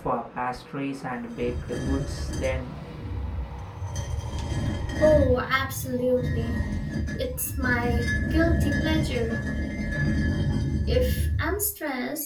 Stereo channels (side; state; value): both; identical; correlation 1.00